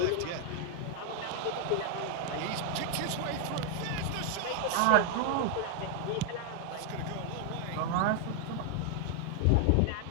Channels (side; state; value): both; different; correlation 0.00